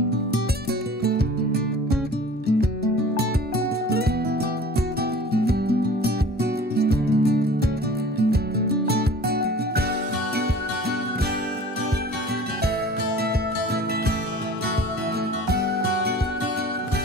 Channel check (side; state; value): both; normal; correlation 0.44